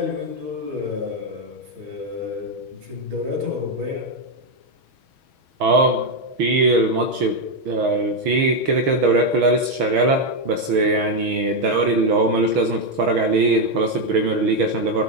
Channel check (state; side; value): late; left; 6.2 ms